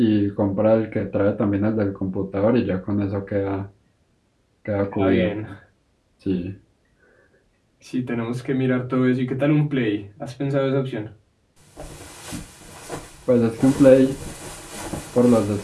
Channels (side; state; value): both; identical; correlation 1.00